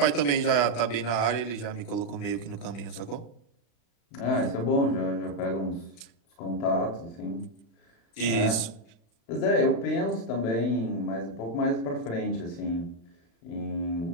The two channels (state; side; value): late; right; 35 ms